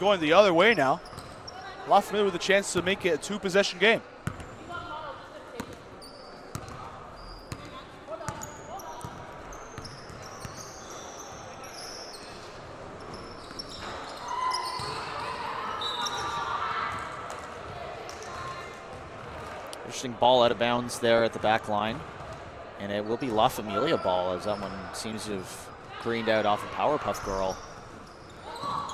the other way now. La Familia with a chance to make it a 2-possession game. Interesting ball out of bounds there at the back line. And it will be La Familia ball, as that one seems to have greened out off a Powerpuff Girl.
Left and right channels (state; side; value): identical; both; correlation 1.00